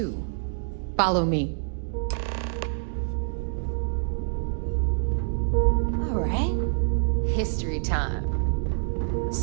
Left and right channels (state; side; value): silent; left; digital silence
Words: Follow me. All right. History time.